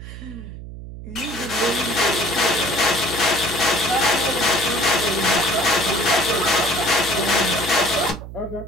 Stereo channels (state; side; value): noise; right; hum, 12 dB below the sound